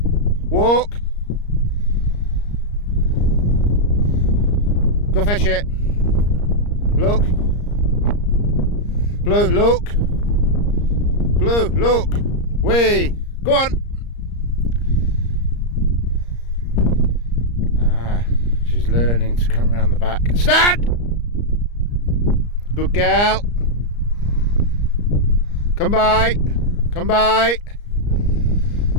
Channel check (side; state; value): right; late; 34 ms